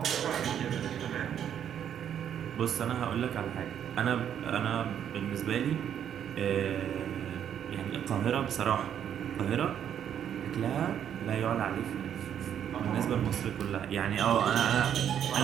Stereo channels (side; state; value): left; quieter; 9.3 dB